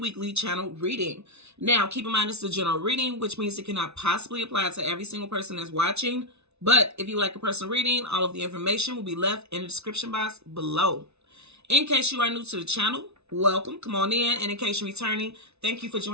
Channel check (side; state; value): left; late; 0.80 ms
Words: channel reading. Now keep in mind it's a general reading, which means it cannot possibly apply to every single person that's watching. But if you like a personal reading, all of the information will be left in the description box below. In case you are new to the channel, welcome, come on in. And in case you're returning, thank you for